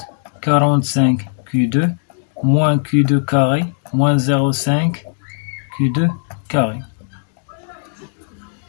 45 Q2 moins Q2 carré moins 0,5 Q2 carré.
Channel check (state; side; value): silent; right; digital silence